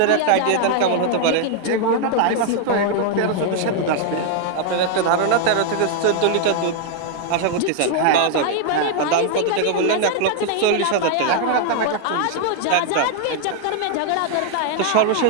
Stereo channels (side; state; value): both; different; correlation 0.00